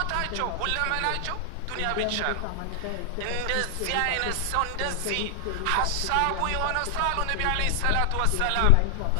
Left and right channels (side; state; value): both; different; correlation 0.00